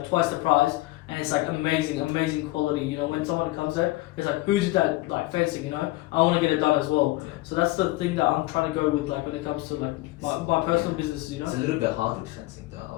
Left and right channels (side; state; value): right; quieter; 19.2 dB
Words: twice the price and it's like amazing quality. You know, when someone comes there, it's like, who did that like fencing? You know, I want to get it done as well. So that's the thing that I'm trying to go with, like when it comes to like my personal businesses. You know, it's a little bit hard with fencing, though, I